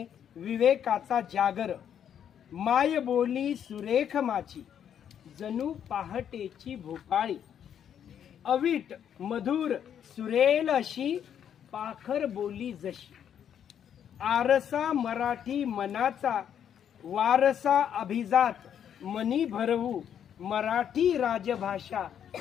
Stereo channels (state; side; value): quieter; right; 9.0 dB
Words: विवेकाचा जागर, माय बोली सुरेख माझी, जणू पहाटेची भोपाळी, अवीट मधुर सुरेल अशी, पाखर बोली जशी, आरसा मराठी मनाचा, वारसा अभिजात मनी भरवू, मराठी राजभाषा